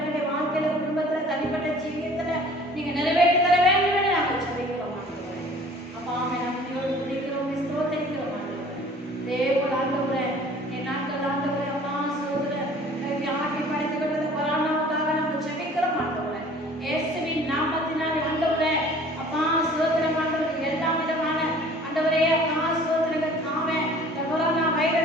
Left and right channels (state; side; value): normal; both; correlation 0.49